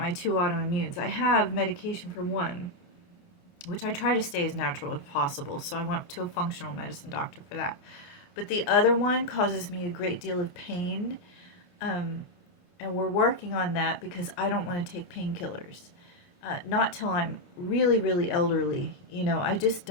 2 autoimmunes. I have medication for one, which I try to stay as natural as possible. So I went to a functional medicine doctor for that. But the other one causes me a great deal of pain. And we're working on that because I don't want to take painkillers. Not till I'm really, really elderly. You know, I just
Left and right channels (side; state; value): right; late; 28 ms